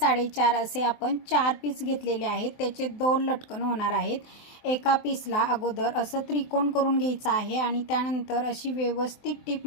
असे आपण 4 पीस घेतलेले आहेत. त्याचे 2 लटकन होणार आहेत. एका पीसला अगोदर असं त्रिकोण करून घ्यायचं आहे आणि त्यानंतर अशी व्यवस्थित टिप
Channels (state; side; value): late; right; 24 ms